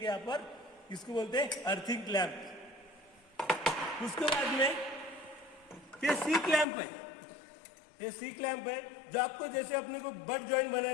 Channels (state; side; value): drops out; right; at 6.7 s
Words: यहाँ पर इसको बोलते हैं अर्थिंग क्लैंप। उसके बाद में ये सी क्लैंप है, ये सी क्लैंप है जो आपको जैसे अपने को बट जॉइंट